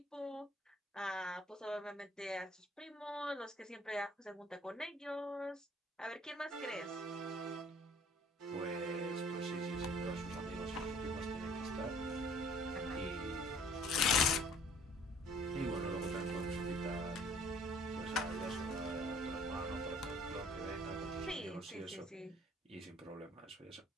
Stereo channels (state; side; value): normal; both; correlation 0.55